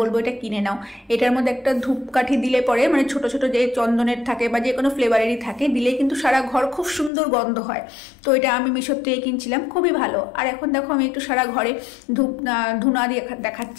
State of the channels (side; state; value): right; drops out; at 7.1 s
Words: এটা কিনে নাও। এটার মধ্যে একটা ধূপকাঠি দিলে পরে, মানে ছোট ছোট যে চন্দনের থাকে বা যে কোনো ফ্লেভারেরই থাকে, দিলে কিন্তু সারা ঘর খুব সুন্দর গন্ধ হয়। তো এটা আমি মিশোর থেকে কিনছিলাম, খুবই ভালো। আর এখন দেখো আমি একটু সারা ঘরে ধুনা দিয়ে